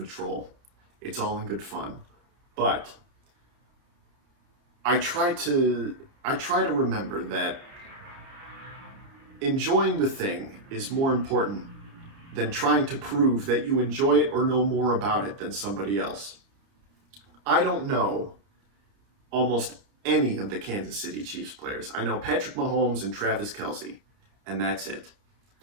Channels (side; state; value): left; late; 30 ms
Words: troll. It's all in good fun. But I try to remember that enjoying the thing is more important than trying to prove that you enjoy it or know more about it than somebody else. I don't know almost any of the Kansas City Chiefs players. I know Patrick Mahomes and Travis Kelce, and that's it.